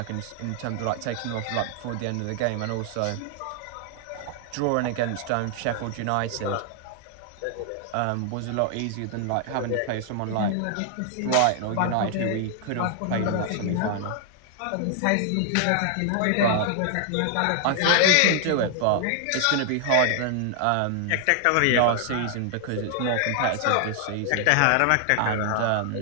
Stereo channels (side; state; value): both; different; correlation 0.00